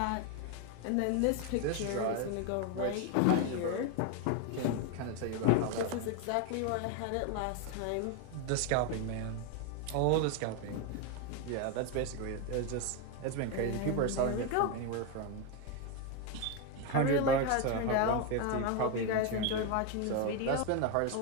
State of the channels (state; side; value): different; both; correlation 0.02